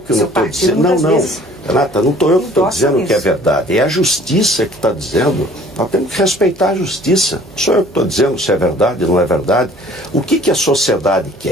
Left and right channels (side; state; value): right; noise; hum, 25 dB below the sound